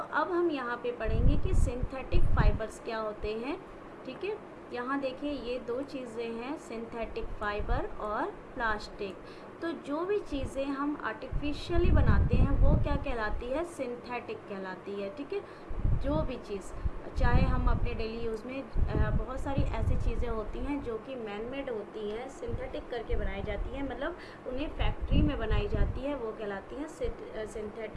हम यहाँ पे पढ़ेंगे कि सिंथेटिक फाइबर्स क्या होते हैं। ठीक है, यहाँ देखिए ये दो चीज़ें हैं, सिंथेटिक फाइबर और प्लास्टिक। तो जो भी चीज़ें हम आर्टिफिशियली बनाते हैं वो क्या कहलाती है, सिंथेटिक कहलाती है। ठीक है, जो भी चीज़, चाहे हम अपने डेली यूज़ में बहुत सारी ऐसी चीज़ें होती हैं जो कि मैन मेड होती हैं, सिंथेटिक करके बनाई जाती हैं, मतलब उन्हें फैक्ट्री में बनाई जाती है, वो कहलाती हैं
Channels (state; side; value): identical; both; correlation 1.00